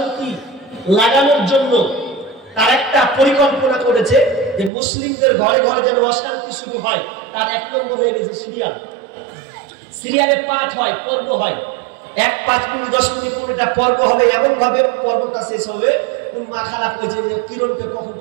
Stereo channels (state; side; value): drops out; left; at 4.7 s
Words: লাগানোর জন্য তার একটা পরিকল্পনা করেছে যে মুসলিমদের ঘরে ঘরে যেন অশান্তি শুরু হয়, তার 1 নম্বর হয়ে গেছে সিরিয়াল। সিরিয়ালে পাঠ হয়, পর্ব হয়, 1 5 মিনিট 10 মিনিট করে একটা পর্ব হবে, এমন ভাবে পর্বটা শেষ হবে কোন মা খারাপ হয়েছে যে কিরণকে কখন